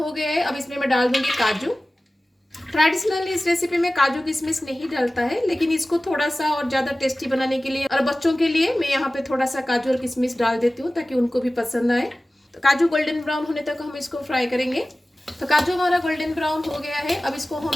गया है, अब इसमें मैं डाल दूंगी काजू। ट्रेडिशनली इस रेसिपी में काजू किशमिश नहीं डालता है, लेकिन इसको थोड़ा सा और ज़्यादा टेस्टी बनाने के लिए और बच्चों के लिए मैं यहाँ पे थोड़ा सा काजू और किशमिश डाल देती हूँ ताकि उनको भी पसंद आए। तो काजू गोल्डन ब्राउन होने तक हम इसको फ्राई करेंगे। तो काजू हमारा गोल्डन ब्राउन हो गया है, अब इसको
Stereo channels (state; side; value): normal; both; correlation 0.97